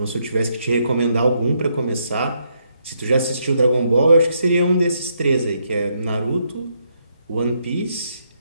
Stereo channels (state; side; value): inverted; both; correlation -0.76